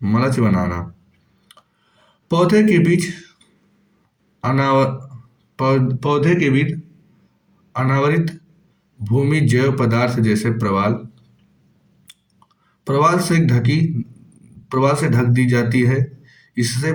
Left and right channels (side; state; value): both; identical; correlation 1.00